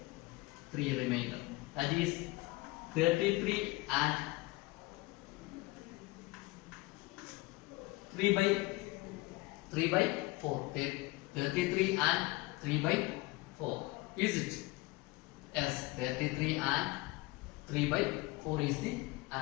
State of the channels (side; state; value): right; quieter; 21.7 dB